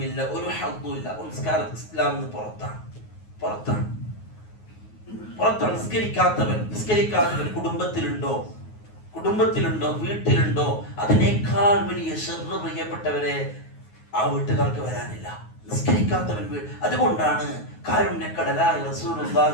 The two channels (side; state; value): right; late; 9.4 ms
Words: ഒരു ഹദ്ദുമില്ല. നമസ്കാരം ഇസ്ലാമിൽ നിന്ന് പുറത്താണ്. നിസ്കരിക്കാത്തവൻ കുടുംബത്തിലുണ്ടോ വീട്ടിലുണ്ടോ, അതിനേക്കാൾ വലിയ ശർറ് പ്രിയപ്പെട്ടവരെ ആ വീട്ടുകാർക്ക് വരാനില്ല. നിസ്കരിക്കാത്തവൻ അതുകൊണ്ടാണ് കാരുണ്യക്കടലായ